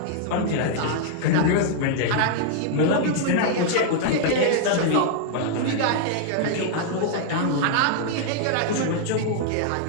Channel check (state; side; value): different; both; correlation -0.01